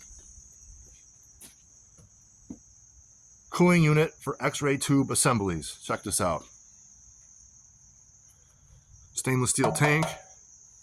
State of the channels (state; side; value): identical; both; correlation 1.00